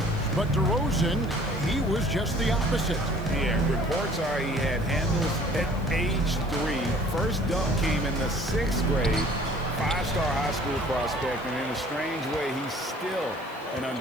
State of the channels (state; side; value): noise; left; hiss, 25 dB below the sound